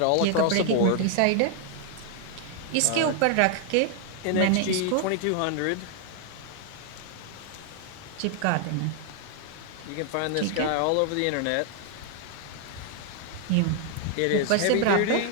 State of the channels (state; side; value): different; both; correlation 0.00